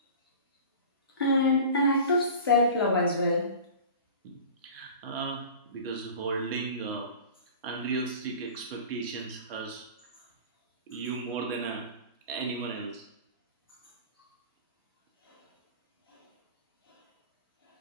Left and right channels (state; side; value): inverted; both; correlation -0.38